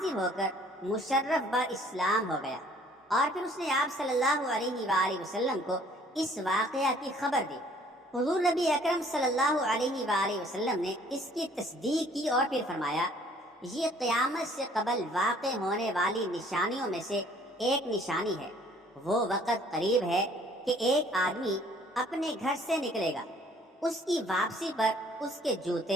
ہو کر مشرف با اسلام ہو گیا اور پھر اس نے آپ صلی اللہ علیہ وآلہ وسلم کو اس واقعہ کی خبر دی۔ حضور نبی اکرم صلی اللہ علیہ وآلہ وسلم نے اس کی تصدیق کی اور پھر فرمایا، یہ قیامت سے قبل واقع ہونے والی نشانیوں میں سے ایک نشانی ہے۔ وہ وقت قریب ہے کہ ایک آدمی اپنے گھر سے نکلے گا، اس کی واپسی پر اس کے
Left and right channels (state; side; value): normal; both; correlation 0.58